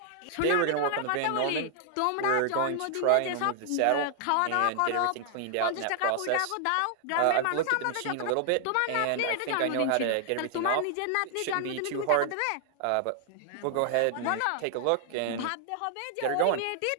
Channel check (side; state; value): both; different; correlation 0.00